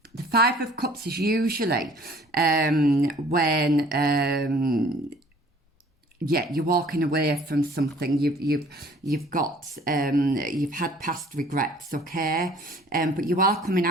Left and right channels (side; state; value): both; normal; correlation 0.53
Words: 5 of Cups is usually when you're walking away from something. You've had past regrets, okay, but you are coming